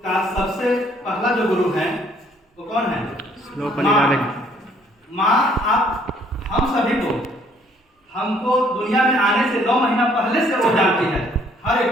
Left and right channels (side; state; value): both; normal; correlation 0.63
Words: का सबसे पहला जो गुरु है वो कौन है? माँ। आप हम सभी को हमको दुनिया में आने से 9 महीना पहले से वो जानती है हर